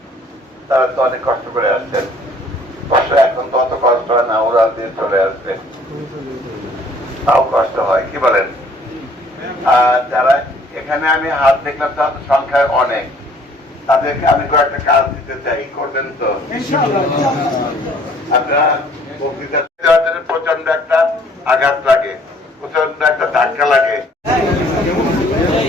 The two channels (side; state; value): both; normal; correlation 0.58